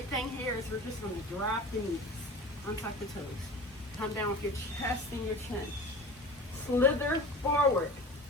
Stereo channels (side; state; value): both; normal; correlation 0.36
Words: thing here is we're just going to drop the knees. Untuck the toes. Come down with your chest and your chin. Slither forward.